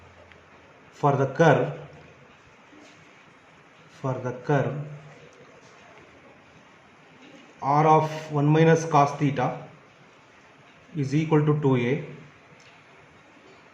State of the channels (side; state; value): both; identical; correlation 1.00